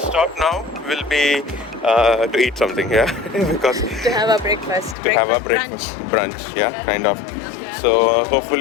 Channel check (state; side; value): drops out; right; at 5.0 s